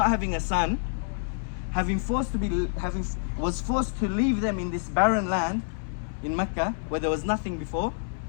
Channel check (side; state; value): right; silent; 60 dB below the other